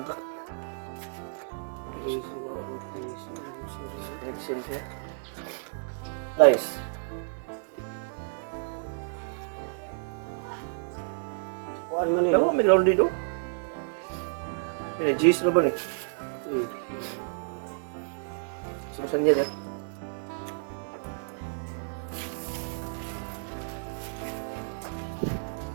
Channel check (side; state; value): left; silent; digital silence